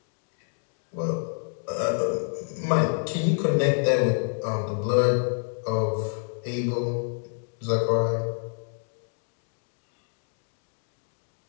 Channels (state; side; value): silent; right; 59 dB below the other